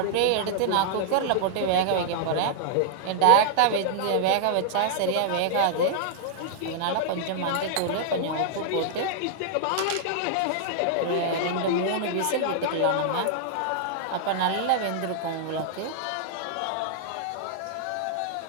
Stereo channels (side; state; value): both; different; correlation -0.01